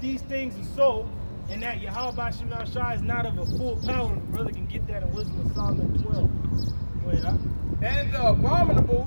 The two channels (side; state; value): both; inverted; correlation -1.00